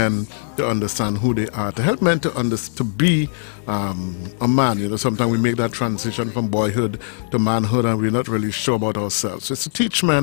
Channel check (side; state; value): right; silent; digital silence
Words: to understand who they are, to help men to be a man. You know, sometimes we make that transition from boyhood to manhood and we're not really sure about ourselves. So it's to teach